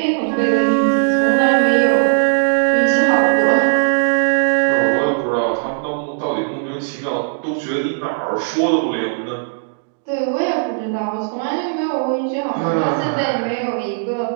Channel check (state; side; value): silent; left; digital silence